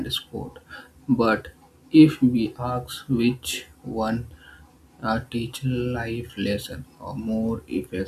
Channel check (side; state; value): both; identical; correlation 1.00